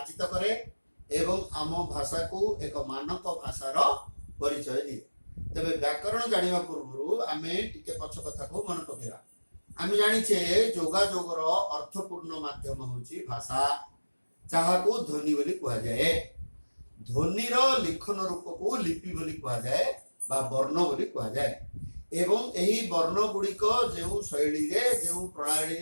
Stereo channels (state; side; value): inverted; both; correlation -1.00